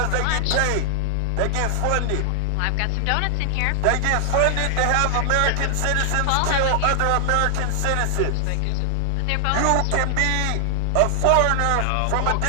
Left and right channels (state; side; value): different; both; correlation 0.00